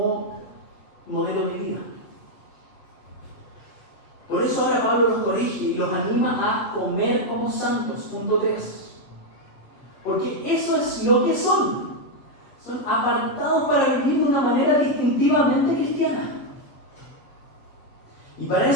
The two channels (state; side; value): late; right; 8.1 ms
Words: modelo de vida. Por eso ahora Pablo los corrige y los anima a comer como santos, punto 3. Porque eso es lo que son. Son apartados para vivir de una manera distintivamente cristiana. Y para